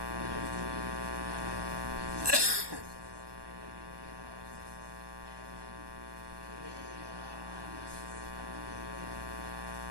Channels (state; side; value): late; left; 1.2 ms